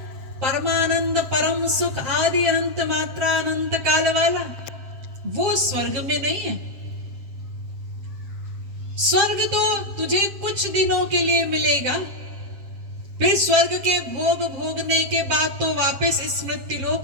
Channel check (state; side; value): late; left; 7.6 ms